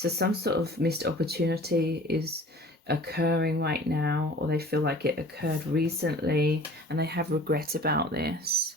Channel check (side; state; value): both; normal; correlation 0.45